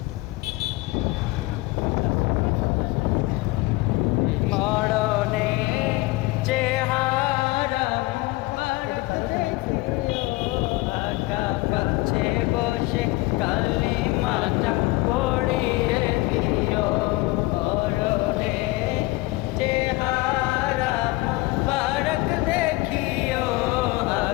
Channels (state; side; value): quieter; right; 21.4 dB